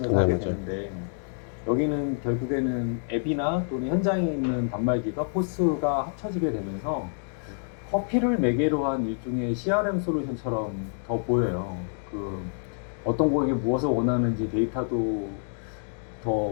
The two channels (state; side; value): silent; right; digital silence